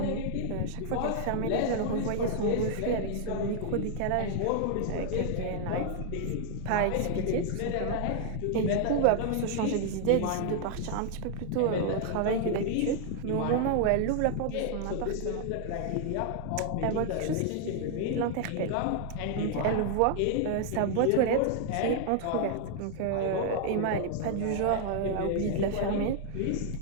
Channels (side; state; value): both; different; correlation 0.00